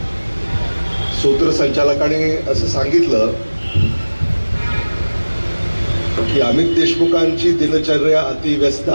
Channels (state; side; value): inverted; both; correlation -1.00